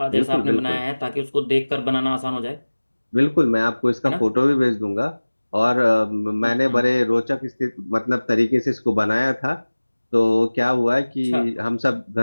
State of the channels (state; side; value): inverted; both; correlation -1.00